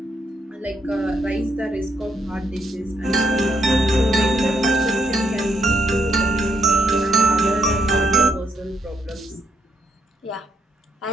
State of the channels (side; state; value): both; normal; correlation 0.76